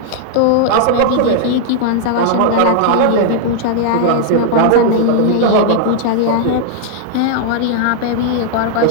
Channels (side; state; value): both; different; correlation -0.01